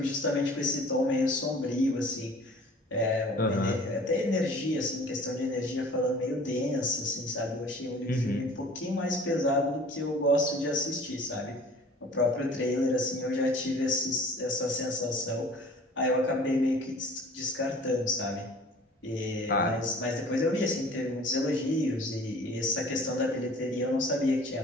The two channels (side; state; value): both; normal; correlation 0.48